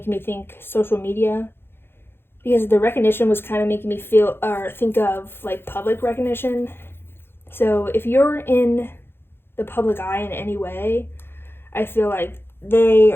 me think social media, because the recognition was kind of making me feel or think of like public recognition. So if you're in the public eye in any way, I feel like they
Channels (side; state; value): right; late; 0.11 ms